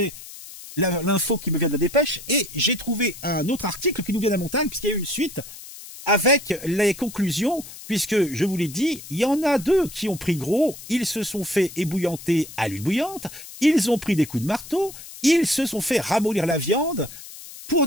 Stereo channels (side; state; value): left; noise; hiss, 15 dB below the sound